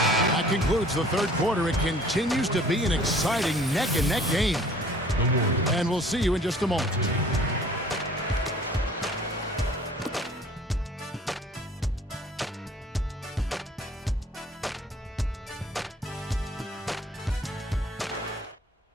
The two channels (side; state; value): both; normal; correlation 0.52